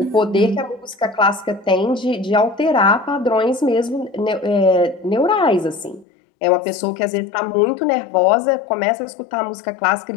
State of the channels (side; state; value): right; drops out; at 6.1 s